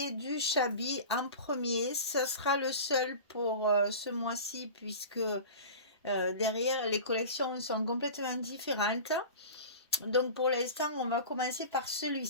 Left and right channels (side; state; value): both; inverted; correlation -0.34